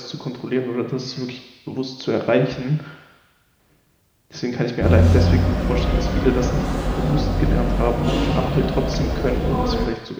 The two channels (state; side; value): identical; both; correlation 1.00